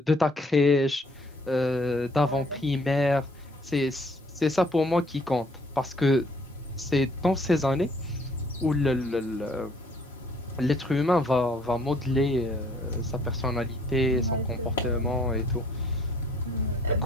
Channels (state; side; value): normal; both; correlation 0.61